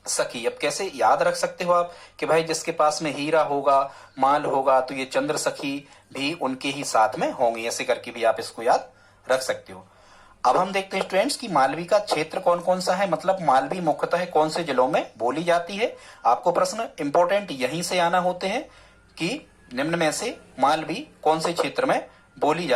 सखी। अब कैसे याद रख सकते हो आप कि भाई जिसके पास में हीरा होगा, माल होगा, तो ये चंद्र सखी भी उनके ही साथ में होंगी, ऐसे करके भी आप इसको याद रख सकते हो। अब हम देखते हैं स्टूडेंट्स कि मालवी का क्षेत्र कौन कौन सा है, मतलब मालवी मुख्यतः कौन से जिलों में बोली जाती है। आपको प्रश्न इंपॉर्टेंट यहीं से आना होते हैं कि निम्न में से मालवी कौन से क्षेत्र में बोली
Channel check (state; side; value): identical; both; correlation 1.00